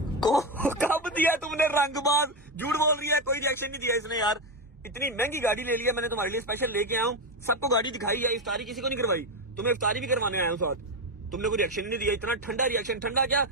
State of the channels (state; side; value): normal; both; correlation 0.11